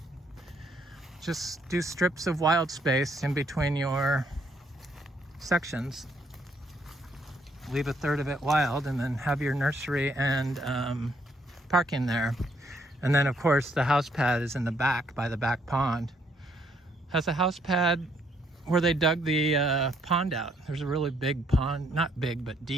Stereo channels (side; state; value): both; normal; correlation 0.70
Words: Just do strips of wild space in between your sections. Leave a third of it wild, and then have your nursery and parking there. And then of course the house pad is in the back by the back pond. Has a house pad where they dug the pond out. There's a really big pond, not big but